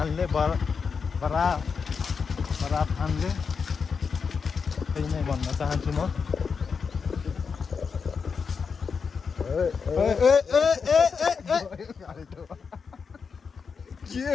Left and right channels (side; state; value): right; quieter; 5.7 dB